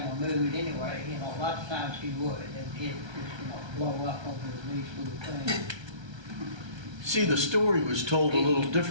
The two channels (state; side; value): late; left; 1.3 ms